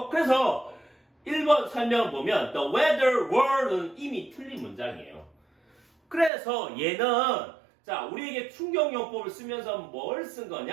그래서 1번 설명을 보면 the weather were는 이미 틀린 문장이에요. 그래서 얘는 자, 우리에게 충격요법을 쓰면서 뭘 쓴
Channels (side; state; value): left; drops out; at 6.3 s